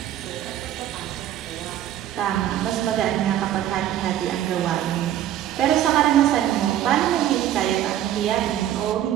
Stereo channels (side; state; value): left; quieter; 11.8 dB